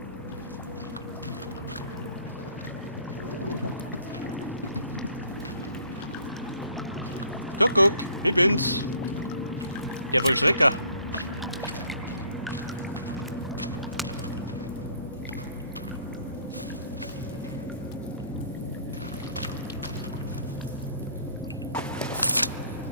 Guck, ich bin's. Der Vollstrecker.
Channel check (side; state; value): both; inverted; correlation -0.58